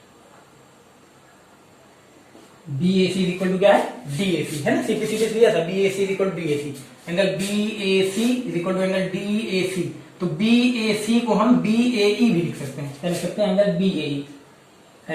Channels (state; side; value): identical; both; correlation 1.00